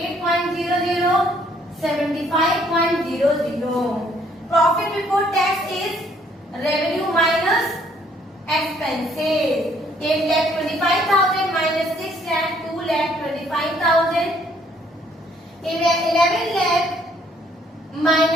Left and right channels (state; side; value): normal; both; correlation 0.64